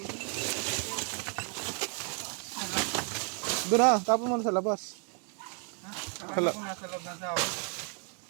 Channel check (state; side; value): quieter; left; 39.9 dB